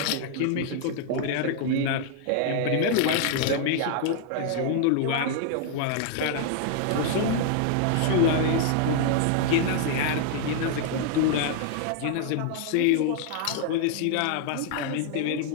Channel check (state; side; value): different; both; correlation 0.00